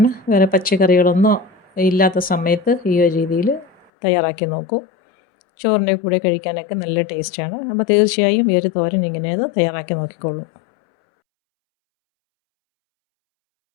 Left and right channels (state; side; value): drops out; right; at 3.9 s